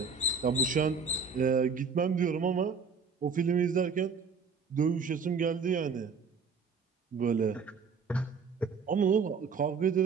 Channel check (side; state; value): left; quieter; 5.3 dB